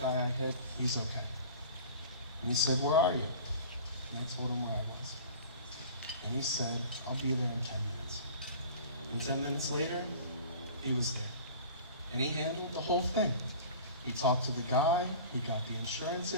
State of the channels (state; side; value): inverted; both; correlation -0.41